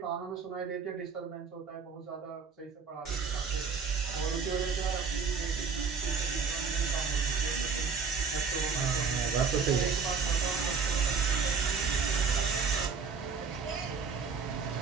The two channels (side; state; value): left; quieter; 5.5 dB